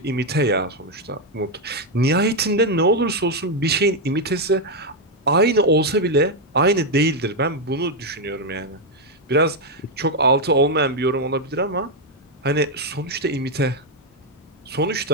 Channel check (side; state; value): both; normal; correlation 0.02